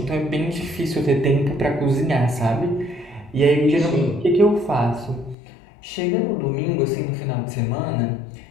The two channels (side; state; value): right; drops out; at 5.4 s